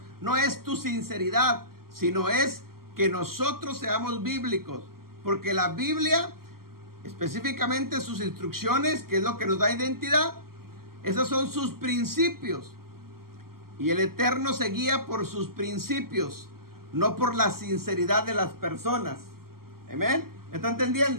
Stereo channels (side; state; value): left; late; 0.93 ms